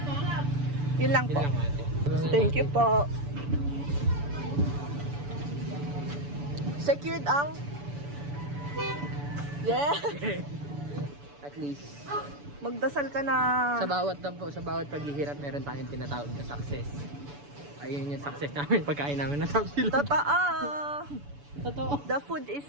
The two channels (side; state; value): left; late; 6.9 ms